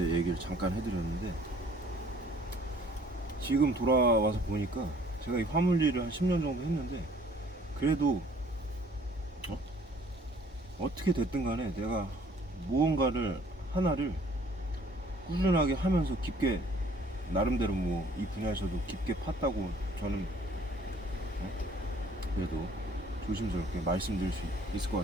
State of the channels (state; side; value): normal; both; correlation 0.57